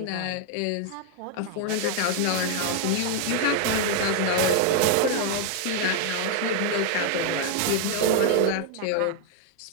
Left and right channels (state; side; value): different; both; correlation 0.00